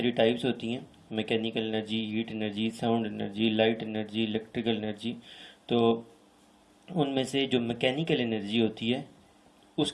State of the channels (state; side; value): identical; both; correlation 1.00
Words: टाइप्स होती हैं, mechanical energy, heat energy, sound energy, light energy, electrical energy. तो उनमें से जो मैकेनिकल एनर्जी होती है